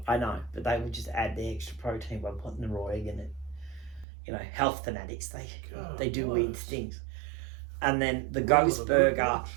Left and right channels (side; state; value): left; drops out; at 4.0 s